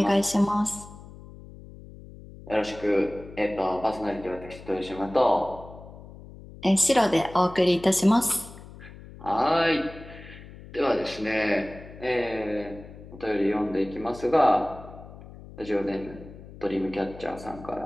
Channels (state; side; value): noise; left; hum, 17 dB below the sound